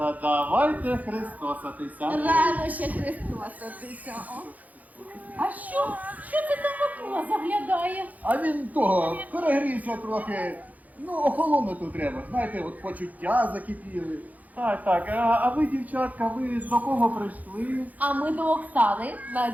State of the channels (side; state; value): left; late; 0.078 ms